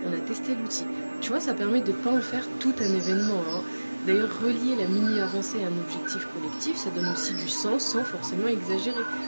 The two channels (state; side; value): inverted; both; correlation -1.00